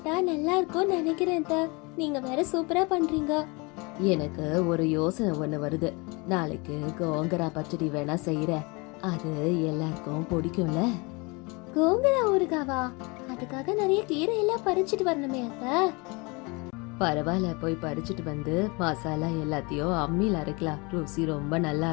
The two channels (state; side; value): quieter; right; 28.0 dB